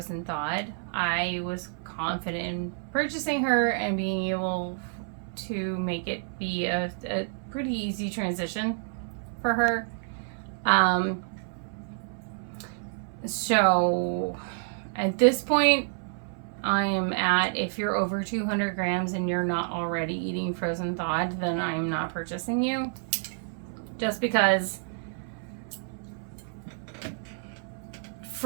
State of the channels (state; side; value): silent; left; 59 dB below the other